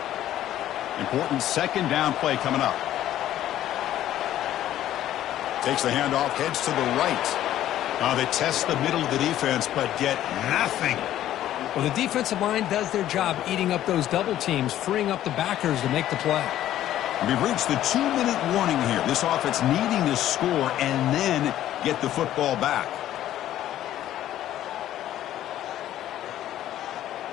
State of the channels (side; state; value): right; quieter; 12.6 dB